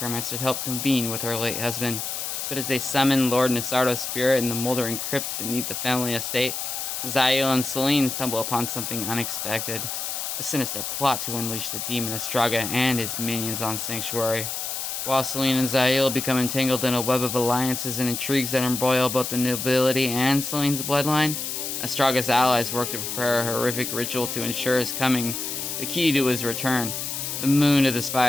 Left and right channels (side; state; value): left; noise; hiss, 4 dB below the sound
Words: to help convene with her late husband. But as they summon Lord Nasardo's spirit in the moldering crypts beneath the family estate, Zael and Celine stumble upon something unexpected, a sinister plot to unleash the demon Astraga and his minions on Sanctuary. While Celine and Zael become entangled in a web of alliances and intrigues that embroil both the nobility and Celine's bloodline, Astraga's allies work to prepare a horrific ritual to ensure his coming. The key to his return, the moon of the